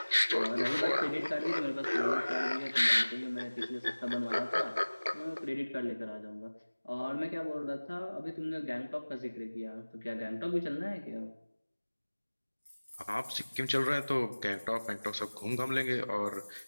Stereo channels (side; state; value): both; inverted; correlation -1.00